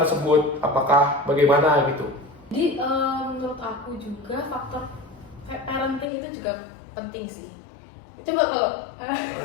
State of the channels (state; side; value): drops out; right; at 6.1 s